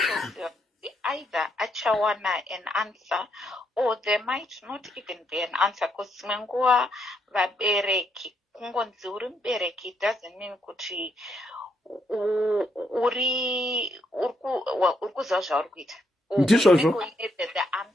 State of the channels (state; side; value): normal; both; correlation 0.76